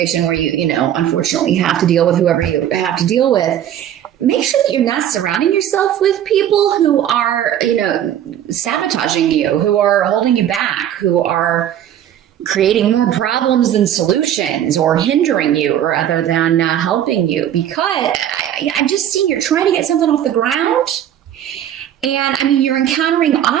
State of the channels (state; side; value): quieter; left; 10.8 dB